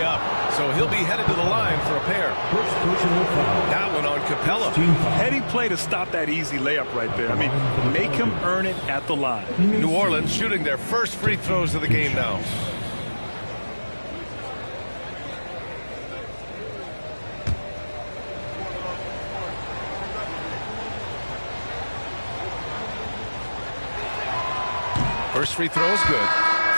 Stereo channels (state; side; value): inverted; both; correlation -1.00